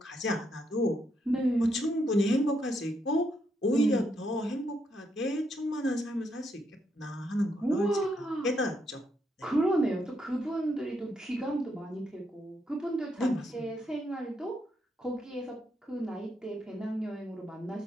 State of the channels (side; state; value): both; normal; correlation 0.78